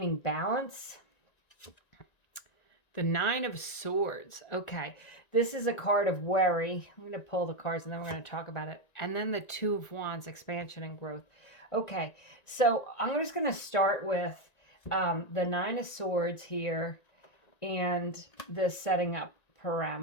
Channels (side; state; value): right; late; 1.9 ms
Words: balance. The Nine of Swords. Okay, this is a card of worry. I'm going to pull the cards and then we're going to talk about it. And then the Two of Wands, expansion and growth. Okay, so I'm just going to start with the Nine of Swords here and the setting up